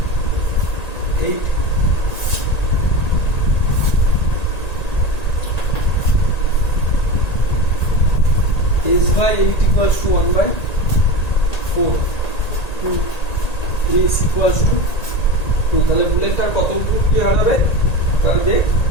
s/8 equals to 1/4, 2 s equals to 2। তাহলে বুলেটটার কত কি হারাবে, তার বেগ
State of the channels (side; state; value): right; late; 1.9 ms